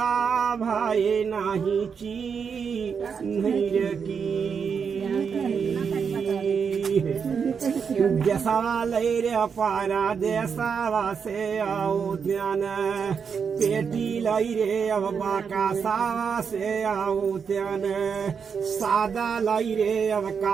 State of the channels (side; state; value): left; quieter; 6.4 dB